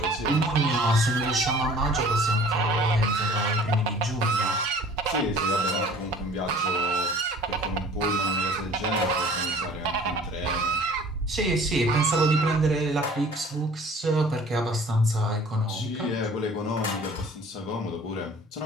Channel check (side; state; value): both; normal; correlation 0.49